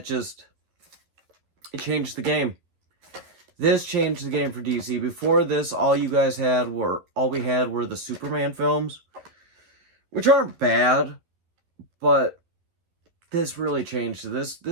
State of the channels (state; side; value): late; left; 11 ms